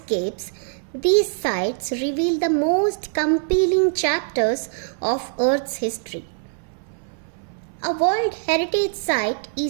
these sites reveal the most compelling chapters of Earth's history. A World Heritage Site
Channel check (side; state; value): left; silent; 63 dB below the other